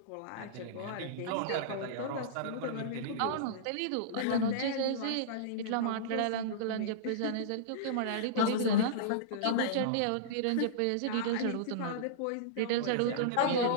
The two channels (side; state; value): both; different; correlation -0.03